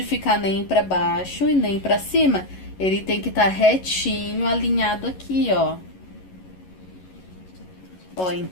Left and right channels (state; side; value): late; right; 11 ms